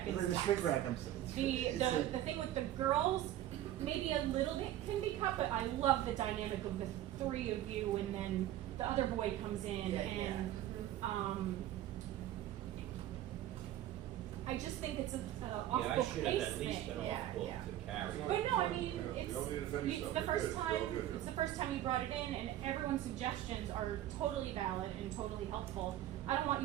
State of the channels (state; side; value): quieter; left; 13.0 dB